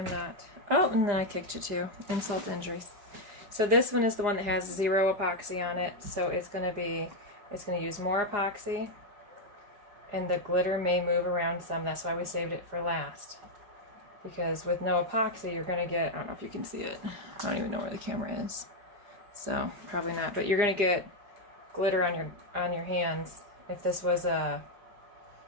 not. Oh, and then I kicked you too. Insult to injuries. So this one is the one that has 0 epoxy on it. So it's gonna use more epoxy, and the glitter may move around some. That's why we saved it for last. Because with no epoxy, you're gonna get, I don't know if you can see it. I don't even know where the camera is. So probably not, but you're gonna get glitter on your hands. If this was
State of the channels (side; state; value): left; late; 4.9 ms